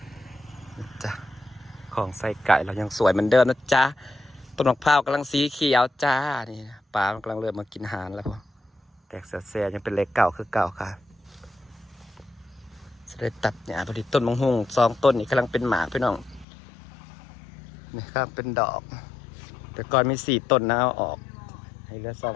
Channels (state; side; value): drops out; right; at 16.4 s